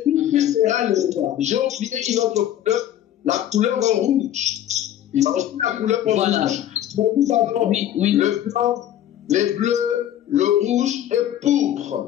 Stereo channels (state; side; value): quieter; right; 11.6 dB